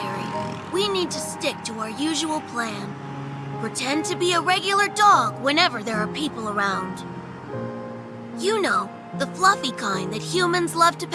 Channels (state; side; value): identical; both; correlation 1.00